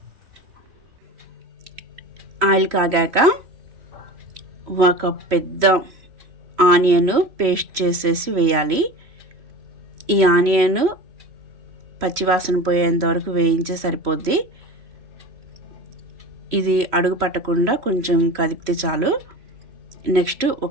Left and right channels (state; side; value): late; left; 3.0 ms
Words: ఆయిల్ కాగాక ఒక పెద్ద ఆనియన్ పేస్ట్ చేసేసి వేయాలి. ఈ ఆనియన్ పచ్చివాసన పోయేంత వరకు వేయించే సరిపోద్ది. ఇది అడుగు పట్టకుండా కొంచెం కదిపితే చాలు. నెక్స్ట్